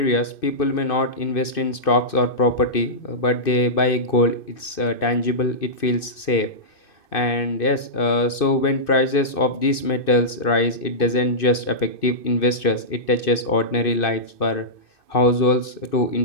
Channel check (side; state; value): right; late; 2.6 ms